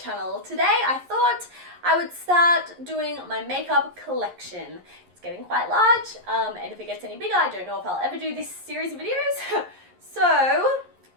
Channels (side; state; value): left; late; 11 ms